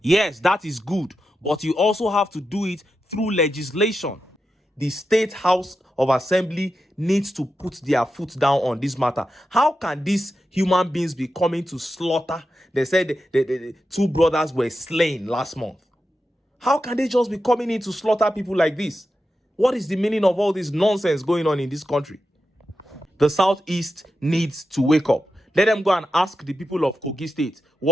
Yes, that is good. But you also have to do it through legislation. The State House of Assembly needs to put their foot down on this matter. How can these human beings be coming to slaughter? They said the two brothers were slain last month. How can they just be coming in to slaughter people like this? What is the meaning of all this nonsense going on in this country? The Southeast needs to wake up. Let them go and ask the people of Kogi State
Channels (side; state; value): both; normal; correlation 0.89